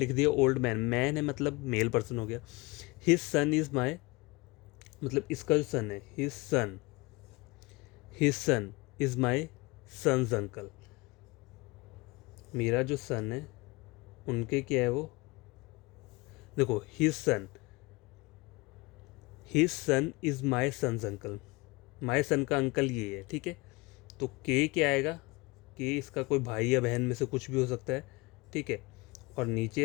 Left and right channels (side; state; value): right; quieter; 24.2 dB